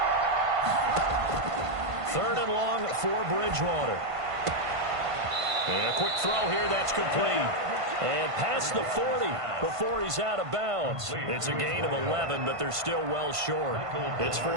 3rd and long for Bridgewater. And a quick throw here, that's complete. And past the 40 before he's out of bounds. It's a gain of 11, but they're still well short. It's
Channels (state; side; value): late; left; 1.5 ms